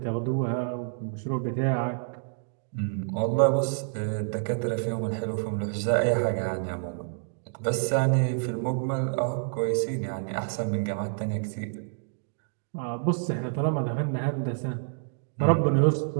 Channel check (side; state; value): left; silent; digital silence